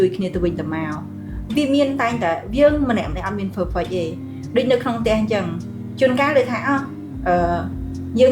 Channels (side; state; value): both; identical; correlation 1.00